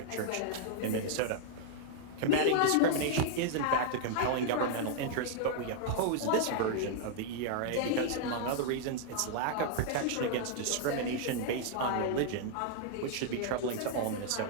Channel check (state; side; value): different; both; correlation -0.01